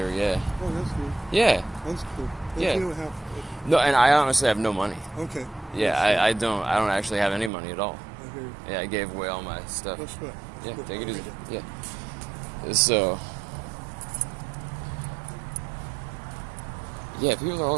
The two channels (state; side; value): drops out; left; at 7.5 s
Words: yeah. Oh, that's good. Yeah. That's cool. Yeah. You don't have... No, and I honestly have no money. Okay. Yeah, I don't actually have any money at all. Okay. Yeah, I gave away all my stuff. That's right. Yeah, take it easy. Yeah. So, yeah, people are